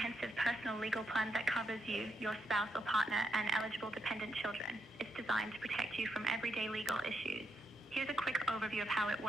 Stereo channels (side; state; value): both; normal; correlation 0.81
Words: personal legal plan that covers you, your spouse or partner, and eligible dependent children. It's designed to protect you from everyday legal issues. Here's a quick overview of how it